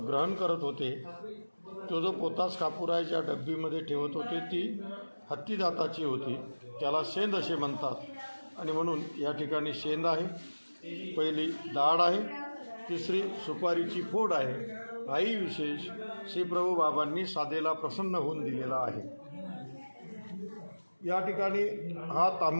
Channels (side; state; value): both; inverted; correlation -1.00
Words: ग्रहण करत होते. तो जो पोतास कापूर आहे ज्या डब्बीमध्ये ठेवत होते ती हत्ती दाताची होती. त्याला शेंद असे म्हणतात आणि म्हणून या ठिकाणी शेंद आहे. पहिली दाढ आहे, तिसरी सुपारीची फोड आहे. हाही विशेष श्री प्रभू बाबांनी साधेला प्रसन्न होऊन दिलेला आहे. या ठिकाणी हा